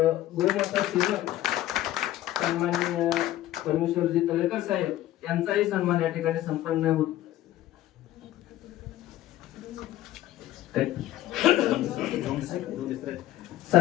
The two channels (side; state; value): right; quieter; 14.1 dB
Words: सेवक सन्माननीय परमेश्वरजी तळेकर साहेब यांचाही सन्मान या ठिकाणी संपन्न होत